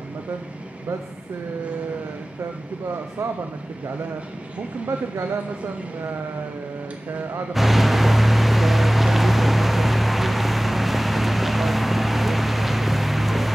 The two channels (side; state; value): both; normal; correlation 0.97